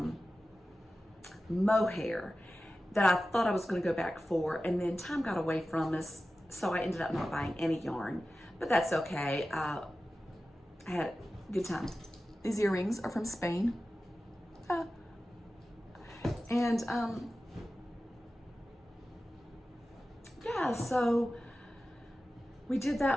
mohair that I thought I was going to go back for, and then time got away from us, so I ended up not buying any yarn, but that's okay. I had a good time. These earrings are from Spain. And yeah, so we did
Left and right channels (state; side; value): normal; both; correlation 0.94